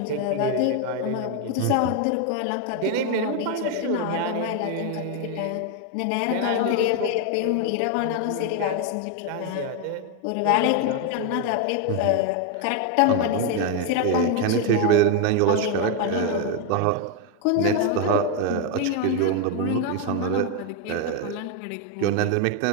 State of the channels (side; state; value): both; different; correlation 0.01